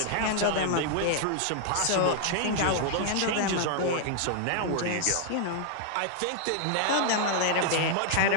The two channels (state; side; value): different; both; correlation 0.00